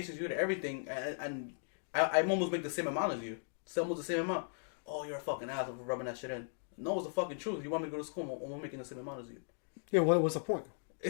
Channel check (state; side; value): silent; right; digital silence